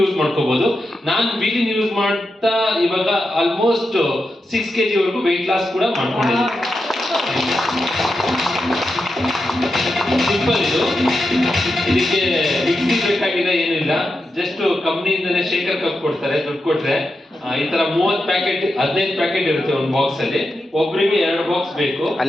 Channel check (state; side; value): normal; both; correlation 0.88